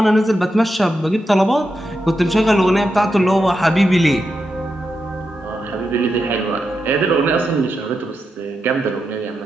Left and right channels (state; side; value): normal; both; correlation 0.87